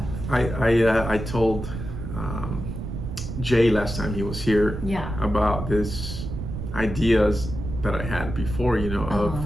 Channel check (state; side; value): noise; right; rumble, 6 dB below the sound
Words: I told Jay last time he was here about this ideas that I had before, you know,